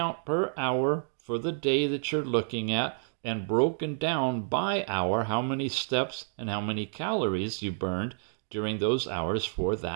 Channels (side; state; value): left; silent; digital silence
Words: per hour for the day that you're looking at, and broken down by hour, how many steps and how many calories you burned during those hours for